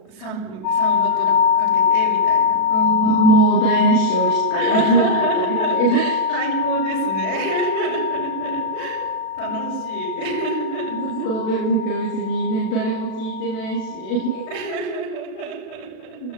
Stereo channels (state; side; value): late; right; 37 ms